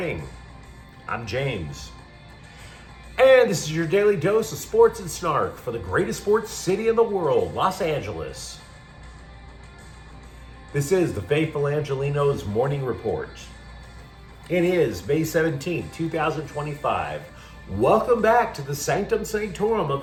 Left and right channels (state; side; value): identical; both; correlation 1.00